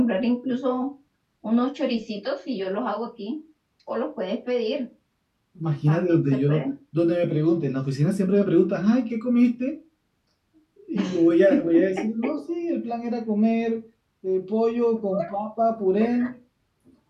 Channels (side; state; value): both; identical; correlation 1.00